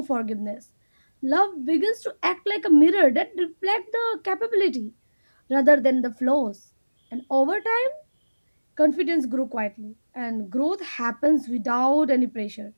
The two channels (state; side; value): inverted; both; correlation -1.00